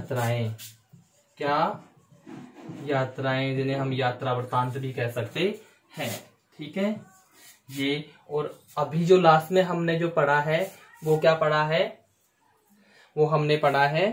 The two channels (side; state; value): both; identical; correlation 1.00